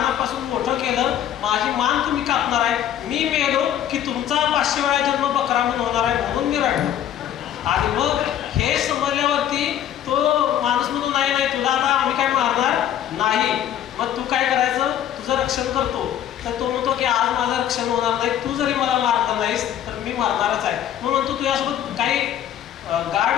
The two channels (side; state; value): right; quieter; 10.7 dB